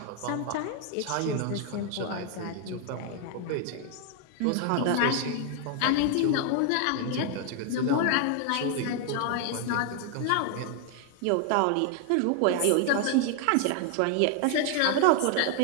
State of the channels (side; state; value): both; different; correlation 0.00